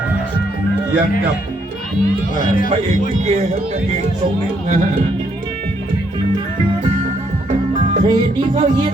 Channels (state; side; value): normal; both; correlation 0.72